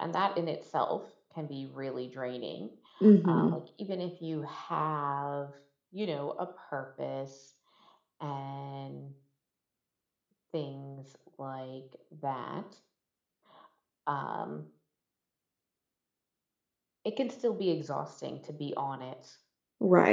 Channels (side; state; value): both; identical; correlation 1.00